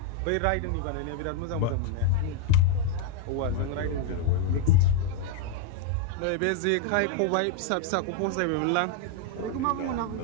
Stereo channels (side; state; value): both; different; correlation 0.00